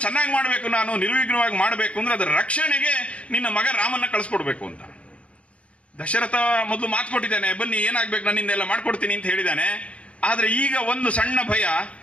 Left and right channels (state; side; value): late; right; 0.062 ms